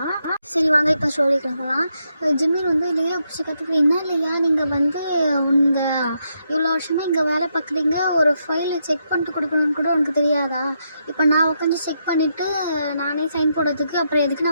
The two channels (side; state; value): both; inverted; correlation -0.80